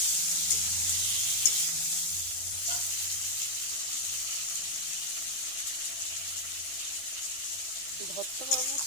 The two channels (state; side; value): late; right; 12 ms